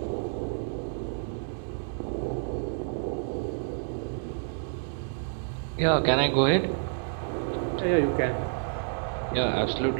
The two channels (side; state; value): left; silent; digital silence